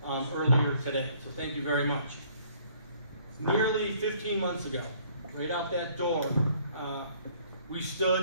earlier today. So thank you very much. Nearly 15 months ago, right out that door, we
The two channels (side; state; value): both; inverted; correlation -0.60